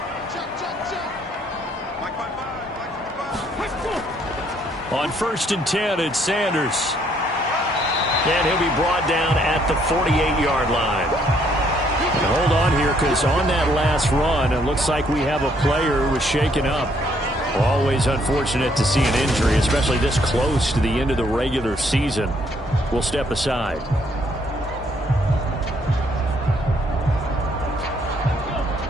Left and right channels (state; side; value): normal; both; correlation 0.68